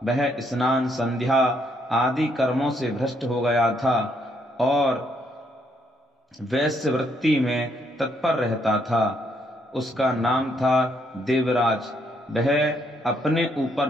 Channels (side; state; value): both; normal; correlation 0.72